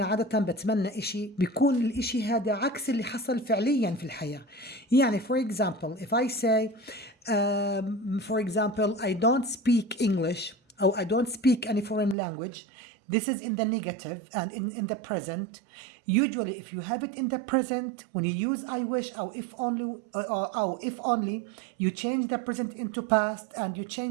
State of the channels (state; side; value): drops out; left; at 12.2 s